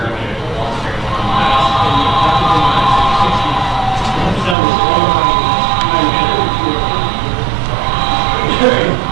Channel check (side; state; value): left; drops out; at 4.5 s